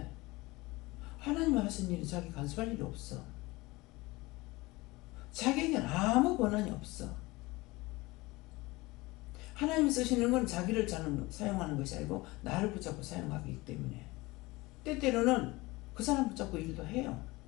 하나님이 하신 일이 자기 간섭할 일이 없어. 자기에게는 아무 권한이 없어. 하나님이 쓰시는 건 자기를 사용하는 것이 아니고 나를 붙잡고 사용하기 때문에 때때로는 그 사람 붙잡고 일도 해요.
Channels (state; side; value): quieter; right; 21.8 dB